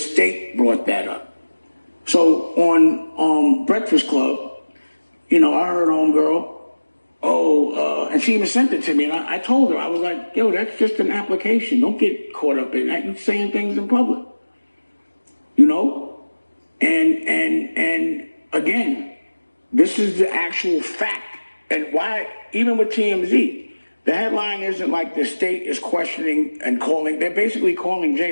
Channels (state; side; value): inverted; both; correlation -1.00